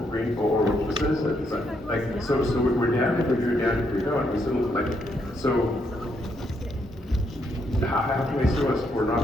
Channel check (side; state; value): both; normal; correlation 0.76